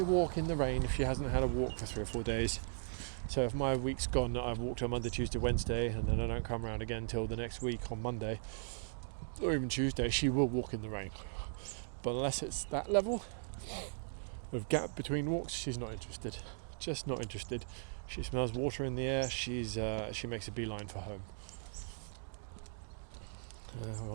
walk in the rain if she hasn't had a walk for 3 or 4 days. So if my week's gone, that I've walked on Monday, Tuesday, Wednesday, and then I don't come around again till the next week on Monday, or even Tuesday, she will walk in the rain. But unless it's that level of gap between walks, she's not interested. Just not interested. She smells water in the air. She makes a beeline for home.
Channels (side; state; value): left; silent; digital silence